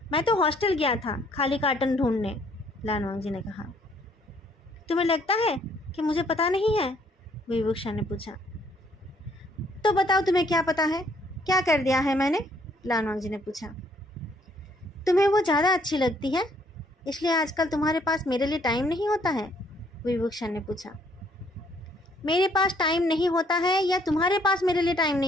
मैं तो हॉस्टल गया था खाली कार्टन ढूंढने, लानोंग ने कहा। तुम्हें लगता है कि मुझे पता नहीं है? विवुक्षा ने पूछा। तो बताओ तुम्हें क्या पता है? क्या कर दिया है मैंने? लानोंग ने पूछा। तुम्हें वो ज़्यादा अच्छी लगती है, इसलिए आजकल तुम्हारे पास मेरे लिए टाइम नहीं होता है? विभूषण ने पूछा। मेरे पास टाइम नहीं होता है या तुम्हारे पास मेरे लिए टाइम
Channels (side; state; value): both; normal; correlation 0.65